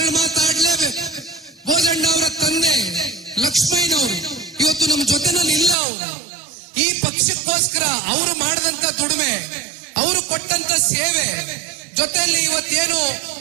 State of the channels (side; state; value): left; drops out; at 5.8 s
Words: ಮಾತಾಡ್ಲೇಬೇಕು. ಬೋಜಣ್ಣ ಅವರ ತಂದೆ ಲಕ್ಷ್ಮಯ್ಯನವರು ಇವತ್ತು ನಮ್ಮ ಜೊತೆನಲ್ಲಿ ಇಲ್ಲ. ಅವರು ಈ ಪಕ್ಷಕ್ಕೋಸ್ಕರ ಅವರು ಮಾಡಿದಂತ ದುಡಿಮೆ, ಅವರು ಕೊಟ್ಟಂತ ಸೇವೆ ಜೊತೆಯಲ್ಲಿ ಇವತ್ತೇನು